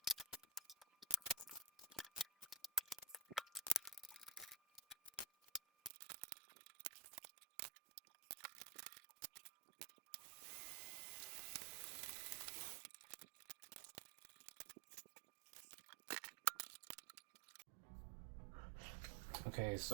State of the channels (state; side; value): drops out; left; at 5.9 s